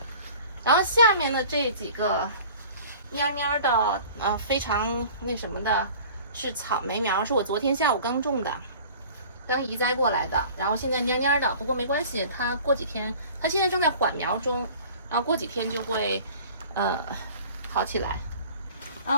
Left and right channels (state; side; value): inverted; both; correlation -0.45